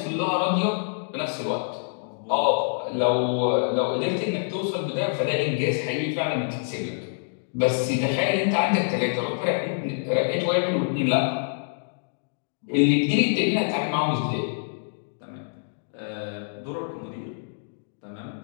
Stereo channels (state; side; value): silent; right; digital silence